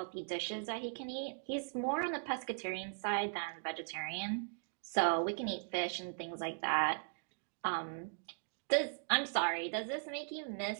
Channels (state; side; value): silent; left; digital silence